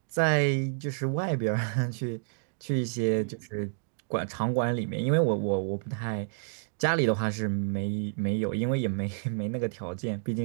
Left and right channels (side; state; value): left; silent; digital silence